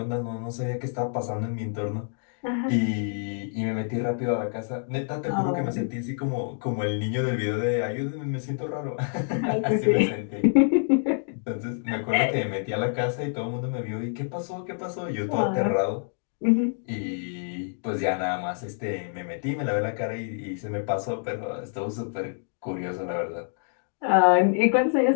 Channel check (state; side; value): silent; right; digital silence